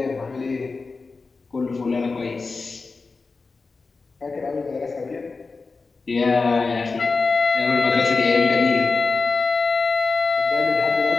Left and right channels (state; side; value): quieter; right; 4.2 dB